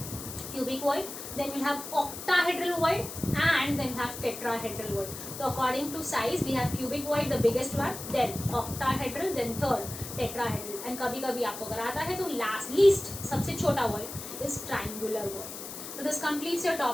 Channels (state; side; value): noise; left; hiss, 10 dB below the sound